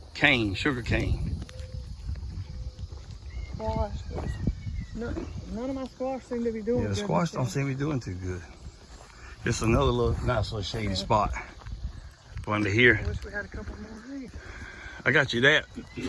cane, sugar cane. Squash. None of my squash seem to be doing good. Yeah, the squash don't seem to be doing too good. Just another little nice little shady spot. Under here. I wish we had a couple more of these. I got you that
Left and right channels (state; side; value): identical; both; correlation 1.00